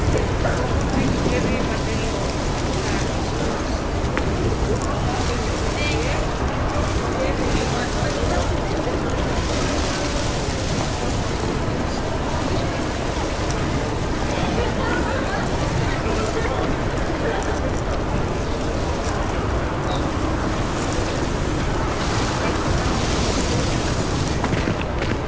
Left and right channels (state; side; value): identical; both; correlation 1.00